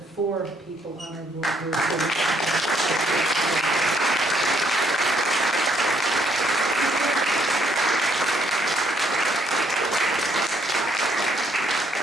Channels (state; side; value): normal; both; correlation 0.70